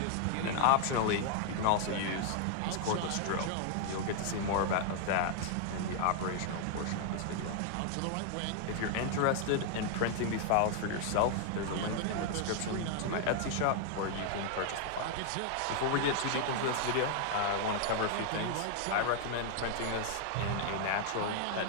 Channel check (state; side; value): different; both; correlation 0.00